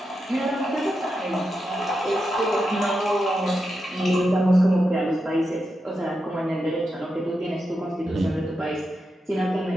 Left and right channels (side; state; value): both; normal; correlation 0.87